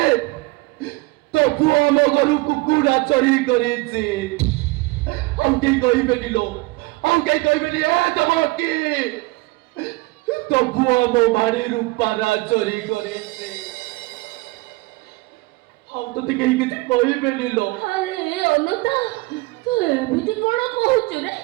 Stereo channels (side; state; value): left; quieter; 22.9 dB